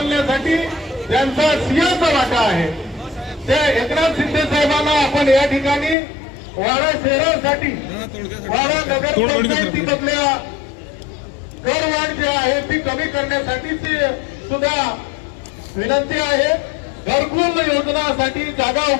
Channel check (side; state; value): right; drops out; at 6.0 s